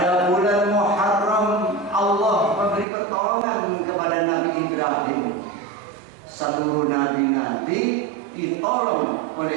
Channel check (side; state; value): left; drops out; at 2.9 s